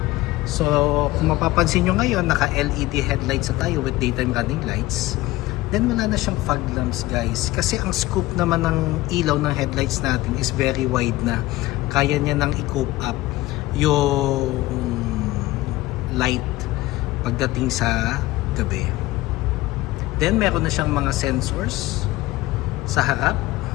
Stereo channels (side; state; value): right; quieter; 18.0 dB